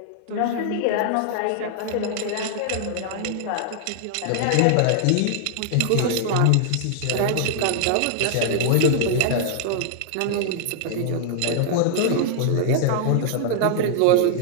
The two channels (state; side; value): different; both; correlation -0.01